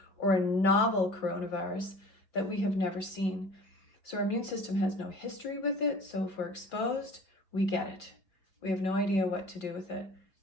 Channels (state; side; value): late; right; 5.3 ms